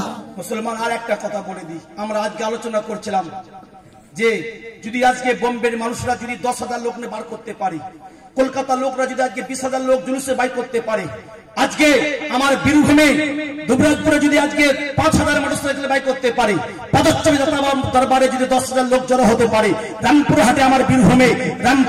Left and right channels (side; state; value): both; identical; correlation 1.00